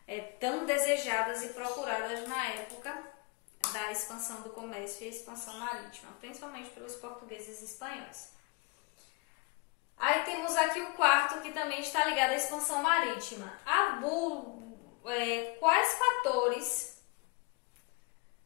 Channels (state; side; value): quieter; right; 27.7 dB